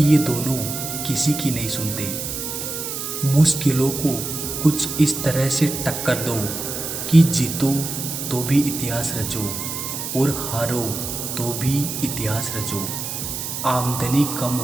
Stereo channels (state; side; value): noise; right; hiss, 5 dB below the sound